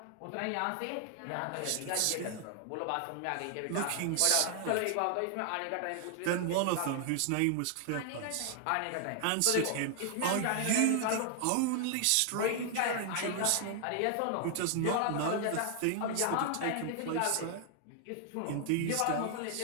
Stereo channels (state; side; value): different; both; correlation 0.00